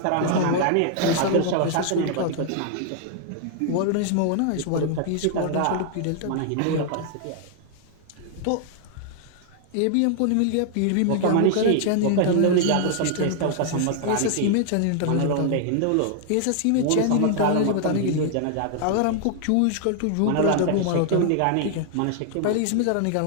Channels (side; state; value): both; different; correlation 0.00